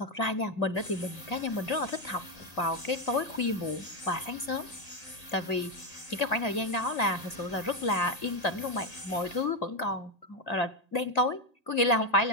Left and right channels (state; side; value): late; right; 1.8 ms